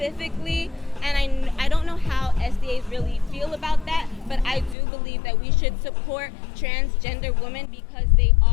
and I don't know how SDAs really feel about that, but I do believe that we should support transgender women because they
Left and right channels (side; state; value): right; drops out; at 4.8 s